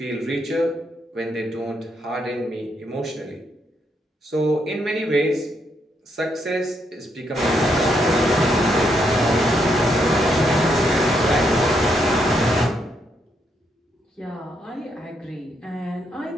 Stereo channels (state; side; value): normal; both; correlation 0.77